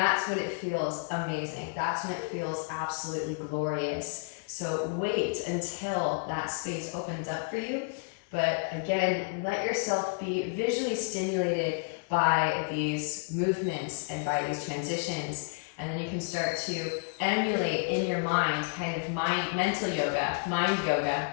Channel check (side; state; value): right; quieter; 36.2 dB